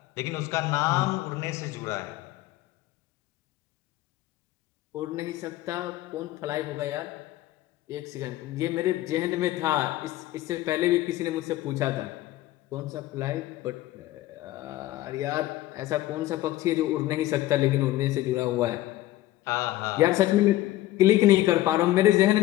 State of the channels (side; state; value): right; quieter; 15.7 dB